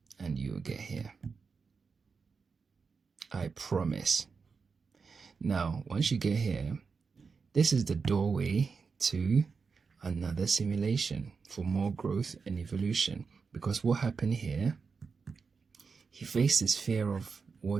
And you will get here. I promise. Now, once you get here, this is the doorway to another simulation for more growth and evolution. Because what happened here, he faced his fear of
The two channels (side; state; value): left; quieter; 5.1 dB